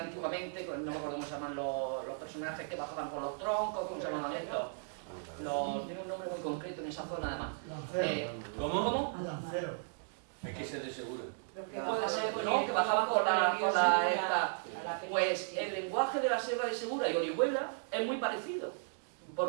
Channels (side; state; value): left; silent; digital silence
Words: antiguamente, no me acuerdo cómo se llaman los personajes que bajaban por los troncos, ¿cómo se llaman estos? Tiene un nombre muy concreto en esa zona además. ¿Cómo? Es que se de seguro. Lo que Que bajaban por la sea, pues el lenguaje de la Sierra de Segura y Orihuela es muy parecido.